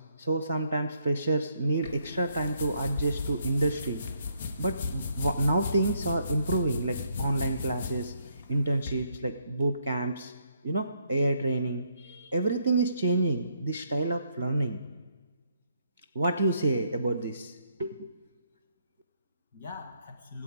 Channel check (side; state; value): both; inverted; correlation -0.73